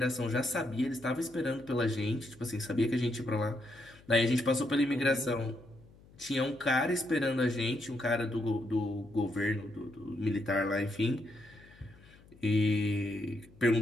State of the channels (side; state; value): left; noise; hum, 25 dB below the sound